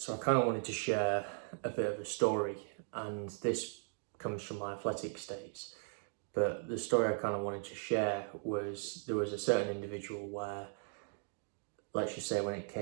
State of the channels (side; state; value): left; silent; 53 dB below the other